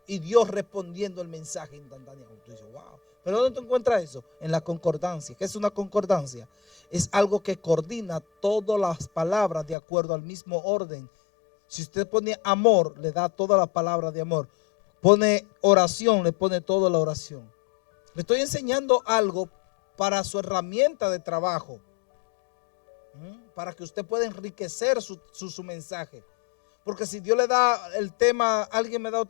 y Dios respondiendo el mensaje instantáneamente. Tú dices: wow. ¿Pero dónde tú encuentras eso? En la concordancia. ¿Qué es una concordancia? Es algo que coordina todas las palabras de acuerdo al mismo orden. Si usted pone amor, le da todas las palabras de amor. Pone oración, le pone toda la oración. Le estoy enseñando algo para su herramienta de trabajo, para que usted pueda enriquecer su mensaje. Porque si Dios le da el tema, ¿alguien me da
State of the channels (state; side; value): drops out; right; at 9.8 s